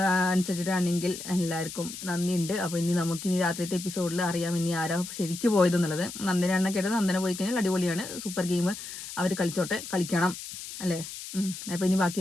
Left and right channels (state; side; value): noise; left; hiss, 10 dB below the sound